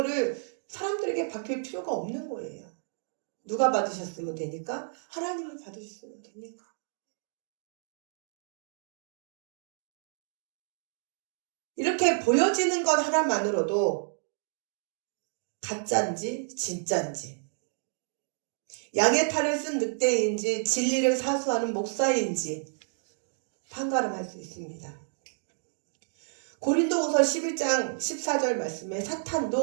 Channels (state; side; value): silent; left; digital silence